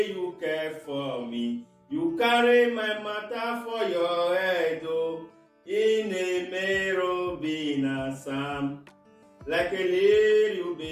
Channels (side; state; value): both; identical; correlation 1.00